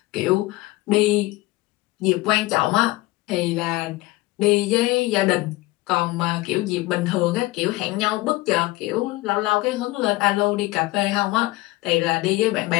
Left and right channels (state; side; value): quieter; right; 20.0 dB